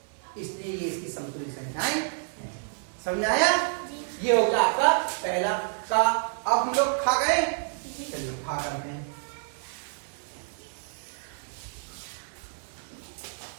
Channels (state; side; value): silent; left; digital silence